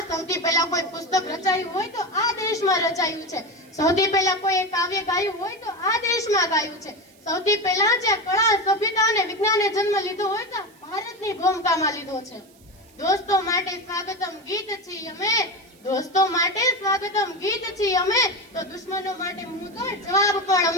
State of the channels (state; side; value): noise; right; hiss, 29 dB below the sound